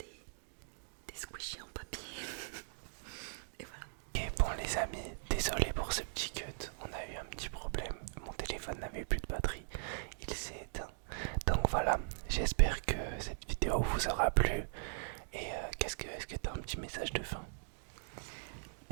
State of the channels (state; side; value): silent; left; digital silence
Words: squishies en papier. Et voilà. Et bon les amis, désolé pour ce petit cut, on a eu un petit problème, mon téléphone n'avait plus de batterie, il s'est éteint. Donc voilà, j'espère que cette vidéo vous aura plu. Et est-ce que tu as un petit message de fin?